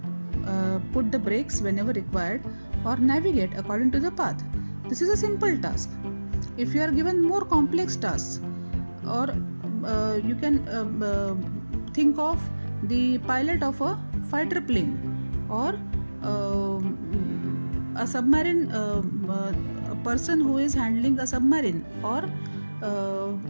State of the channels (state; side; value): inverted; both; correlation -1.00